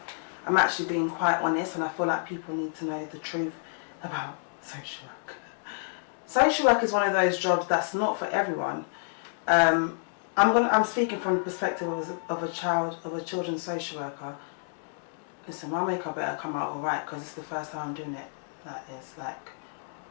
I'm actually being quite honest, and I feel like people need to know the truth about social work. Social work is one of those jobs that's not for everyone. I'm speaking from the perspective of a children's social worker. Listen, my makeup better come out alright, because it's the first time I'm doing it like this, like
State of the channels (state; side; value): silent; right; digital silence